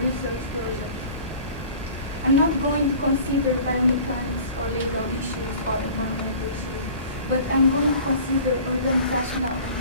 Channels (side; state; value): both; inverted; correlation -0.45